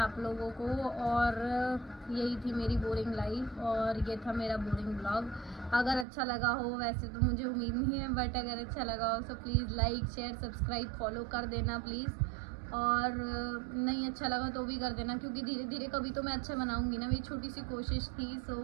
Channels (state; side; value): drops out; left; at 6.1 s